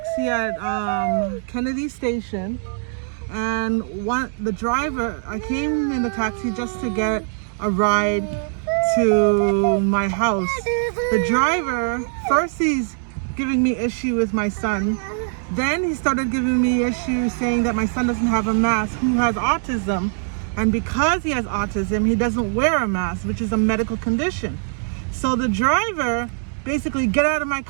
at Kennedy Station, and the driver, I came in the taxi just to get a ride to my house. The driver, first he's giving me issue with my son, then he started giving me issue saying that my son doesn't have a mask, who has autism, and because he has autism, he doesn't wear a mask, which is a medical condition. So the driver basically, get out of my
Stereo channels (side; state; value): left; silent; 61 dB below the other